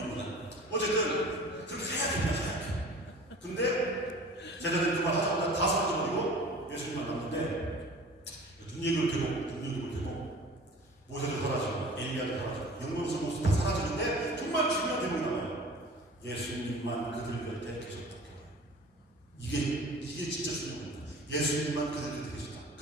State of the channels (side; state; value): both; normal; correlation 0.42